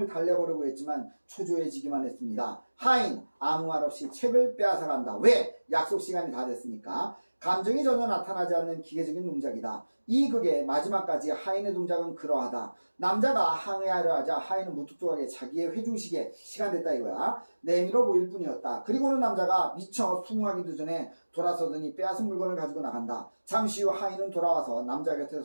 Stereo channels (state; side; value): inverted; both; correlation -1.00